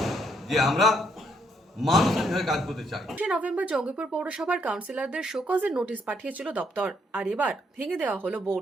যে আমরা মানুষের হয়ে কাজ করতে চাই। নভেম্বর জঙ্গিপুর পৌরসভার কাউন্সিলরদের শোকজের নোটিশ পাঠিয়েছিল দপ্তর, আর এবার ভেঙে দেওয়া হলো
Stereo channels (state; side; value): normal; both; correlation 0.72